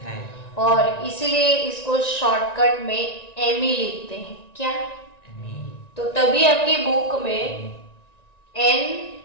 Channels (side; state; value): right; late; 1.9 ms